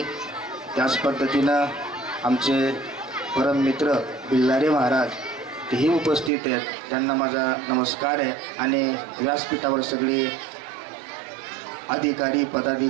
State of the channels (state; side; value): drops out; left; at 6.3 s